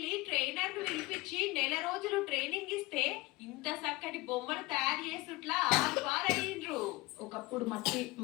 ట్రైనర్ ను పిలిపించి నెల రోజులు ట్రైనింగ్ ఇస్తే ఇంత చక్కటి బొమ్మలు తయారు చేసుట్లా అయ్యిండ్రు. ఒకప్పుడు మట్టి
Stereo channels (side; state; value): right; quieter; 21.7 dB